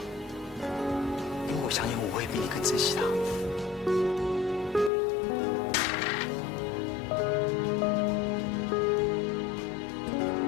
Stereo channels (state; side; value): drops out; right; at 4.9 s